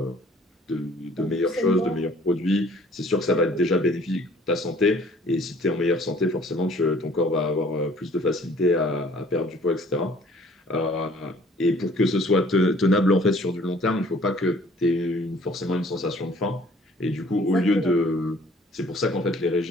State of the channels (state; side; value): normal; both; correlation 0.56